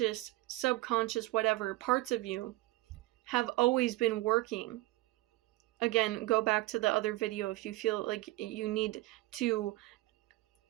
subconscious, whatever parts of you have always been working. Again, go back to the other video if you feel like you need to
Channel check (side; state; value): left; quieter; 19.3 dB